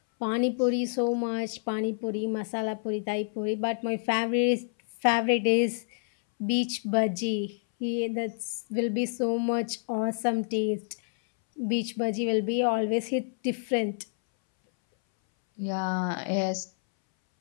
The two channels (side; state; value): right; silent; 59 dB below the other